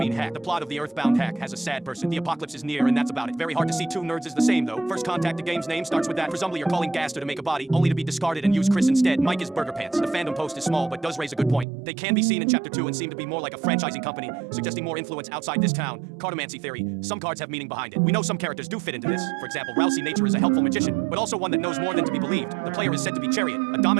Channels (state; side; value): drops out; left; at 11.7 s